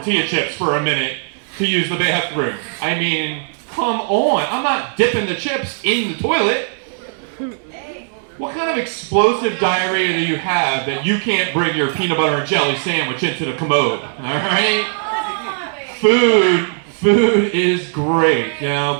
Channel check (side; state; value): left; silent; digital silence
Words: chips for a minute to use the bathroom. I mean, come on. I'm not dipping the chips in the toilet. What kind of explosive diarrhea do you have that you can't bring your peanut butter and jelly sandwich into the commode? All right? Food is great, you know,